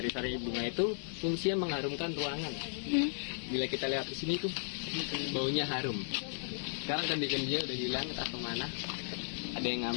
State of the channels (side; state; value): right; silent; 54 dB below the other